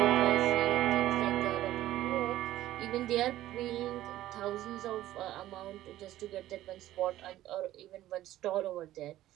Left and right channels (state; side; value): quieter; left; 14.3 dB